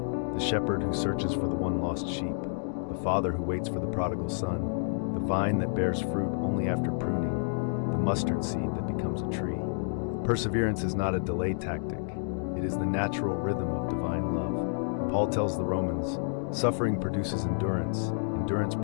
The shepherd who searches for the one lost sheep, the father who waits for the prodigal son, the vine that bears fruit only after pruning, the mustard seed that becomes a tree. Perseverance is not a delay tactic. It is the natural rhythm of divine love. Paul tells the Romans, suffering produces endurance, endurance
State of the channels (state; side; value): silent; right; digital silence